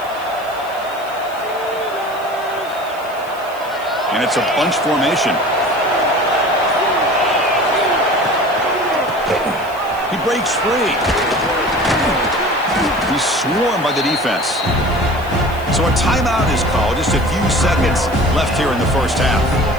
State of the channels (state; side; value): noise; left; hiss, 22 dB below the sound